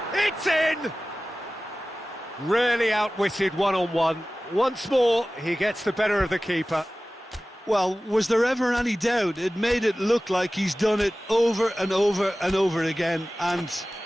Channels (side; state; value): both; normal; correlation 0.97